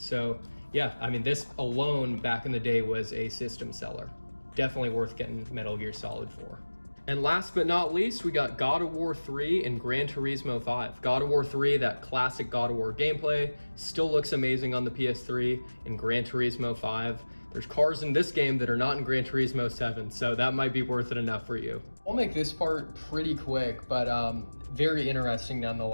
yeah, I mean, this alone back in the day was a system seller. Definitely worth getting Metal Gear Solid 4. And last but not least, we got God of War 3 and Gran Turismo 5. God of War 3, that classic God of War gameplay, still looks amazing on the PS3. And Gran Turismo 5, there's cars in this game that are not in Gran Turismo 7, so that might be worth it enough for you. I'll make this part pretty quick, but very interesting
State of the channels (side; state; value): both; inverted; correlation -1.00